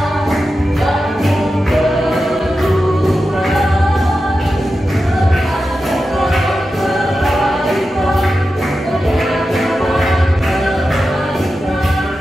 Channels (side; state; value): both; normal; correlation 0.91